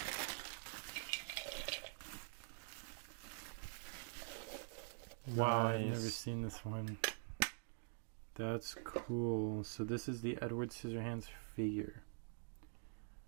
Wow, I've Nice. never seen this one. That's cool. So this is the Edward Scissorhands figure.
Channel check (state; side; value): silent; left; digital silence